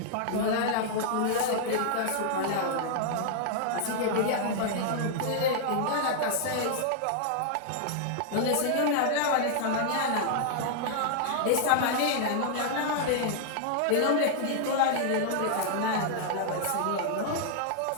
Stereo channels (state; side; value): different; both; correlation -0.01